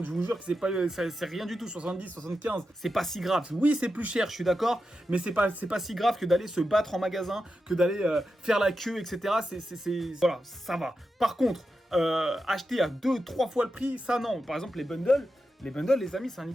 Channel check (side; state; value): both; normal; correlation 0.89